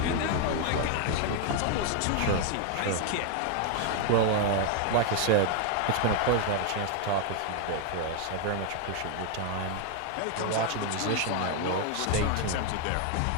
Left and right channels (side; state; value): both; different; correlation 0.00